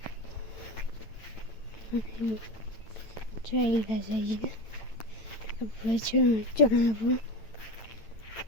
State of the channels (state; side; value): late; right; 8.9 ms